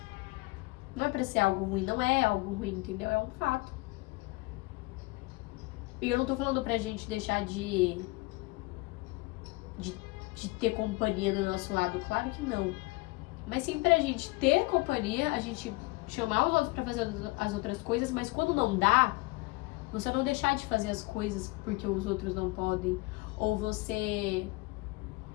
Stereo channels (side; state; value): right; quieter; 23.2 dB